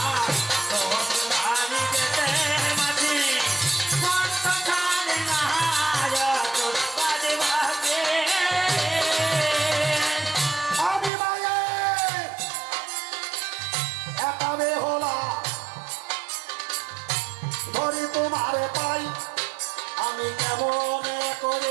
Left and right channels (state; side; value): drops out; left; at 11.1 s